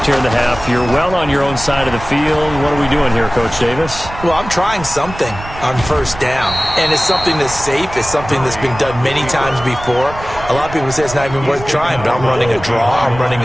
here in the half. You're well on your own side of the field. What are we doing here, Coach Davis? Well, I'm trying something on first down, and it's something that's safe. It's something that's been done many times before. A lot of people say it's not even worth trying, but I'm running a draw. I'm running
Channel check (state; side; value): noise; right; rumble, 13 dB below the sound